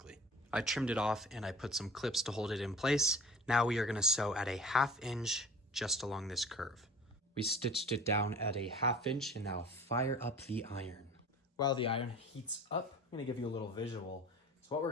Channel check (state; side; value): normal; both; correlation 0.42